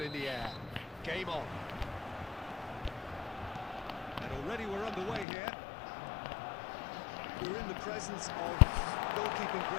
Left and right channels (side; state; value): right; drops out; at 5.2 s